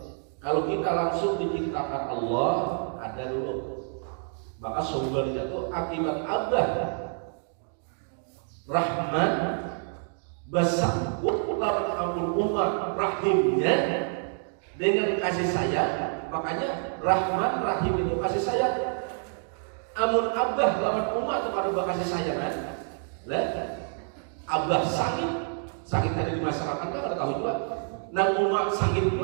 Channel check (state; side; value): silent; left; 59 dB below the other